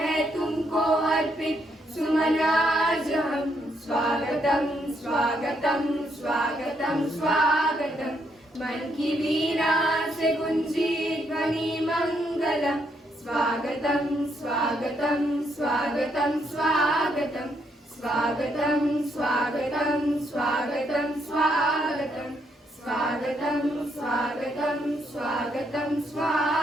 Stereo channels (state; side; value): normal; both; correlation 0.74